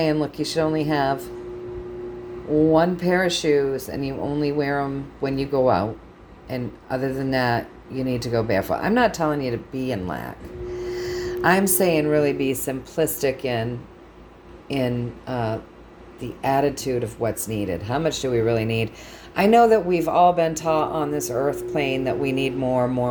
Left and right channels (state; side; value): identical; both; correlation 1.00